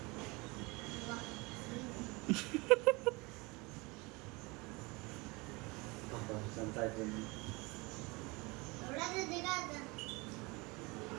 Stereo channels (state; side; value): quieter; left; 25.5 dB